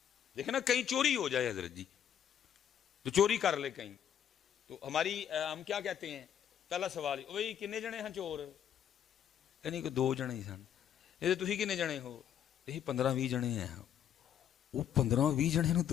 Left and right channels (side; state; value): right; quieter; 9.5 dB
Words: دیکھیں نا کہیں چوری ہو جائے حضرت جی، تو چوری کر لے کہیں، تو ہماری ہم کیا کہتے ہیں، پہلا سوال وہی کنے جنے ہیں چور، یعنی کہ 2 جنے ہی سن. یہ تسی کنے جنے ہو، یہی 15-20 جنے ہیں. وہ 15-20 جنے نو